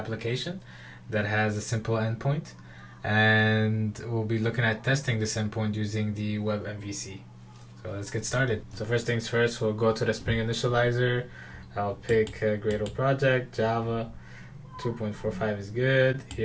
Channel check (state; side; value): identical; both; correlation 1.00